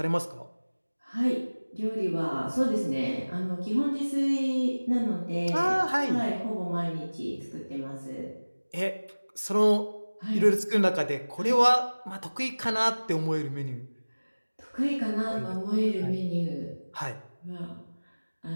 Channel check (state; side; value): inverted; both; correlation -1.00